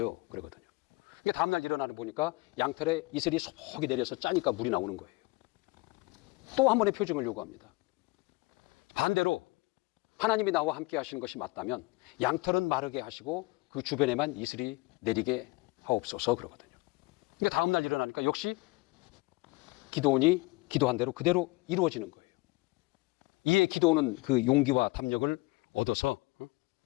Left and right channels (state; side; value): quieter; right; 23.9 dB